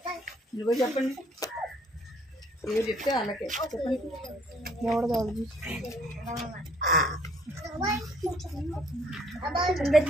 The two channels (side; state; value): both; normal; correlation 0.62